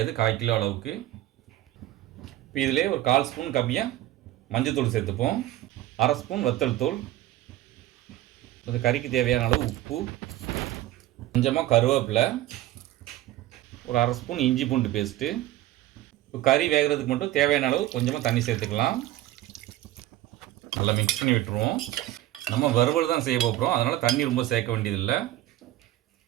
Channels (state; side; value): quieter; left; 15.0 dB